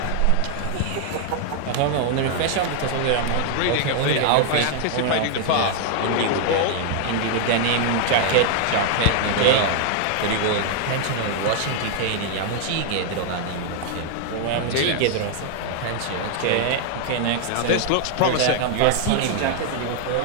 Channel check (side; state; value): both; different; correlation 0.00